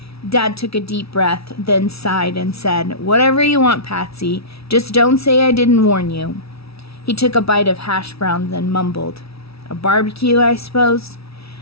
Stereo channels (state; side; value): late; right; 0.76 ms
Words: Dad took a deep breath, then sighed and said, "Whatever you want, Patsy. Just don't say I didn't warn you." He took a bite of hash browns and mumbled, "A barbecue, I suppose?"